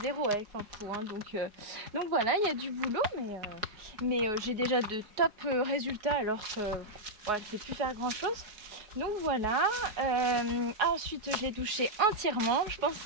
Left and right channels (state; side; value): late; left; 4.8 ms